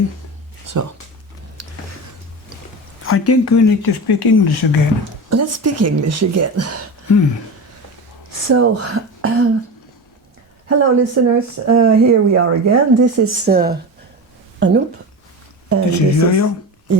So, I think we need to speak English again. let's speak English again. So, hello listeners, here we are again. This is Anup. And This is Yoyo.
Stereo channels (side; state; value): both; normal; correlation 0.26